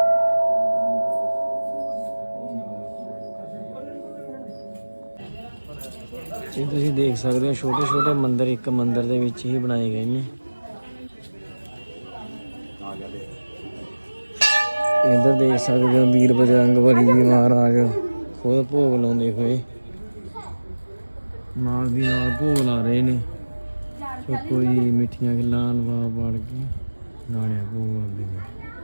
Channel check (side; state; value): both; inverted; correlation -1.00